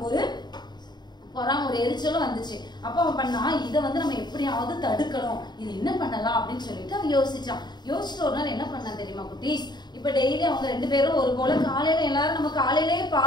ஒரு ஒரு எரிச்சலும் வந்துச்சு. அப்ப அவன் பண்ணா, இதை வந்து நம்ம எப்படியாவது தடுக்கணும், இது என்ன பண்ணலாம் அப்படின்னு சொல்லிட்டு அவன் யோசிச்சுட்டு ஒரு நாள் என்ன பண்ணான் தெரியுமா குட்டீஸ், இப்ப டெய்லி அவங்க 2 பேரும் ஒரு போல காலையில எல்லாரும் நம்ம காலையிலேயே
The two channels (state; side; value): late; right; 0.21 ms